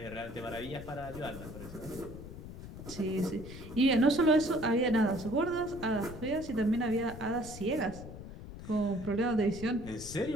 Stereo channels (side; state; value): left; noise; rumble, 12 dB below the sound